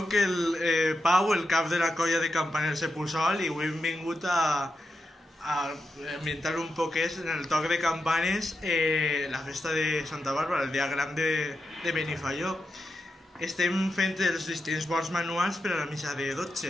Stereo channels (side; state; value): both; normal; correlation 0.88